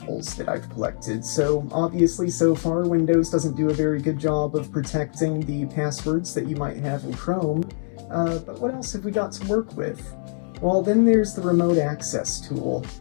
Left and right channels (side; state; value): right; silent; 63 dB below the other